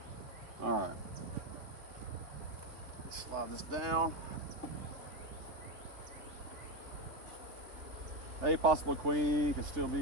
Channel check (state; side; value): late; left; 3.3 ms